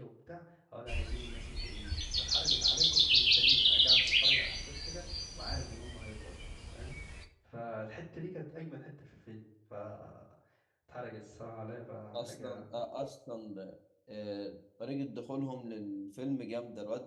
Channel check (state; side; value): identical; both; correlation 1.00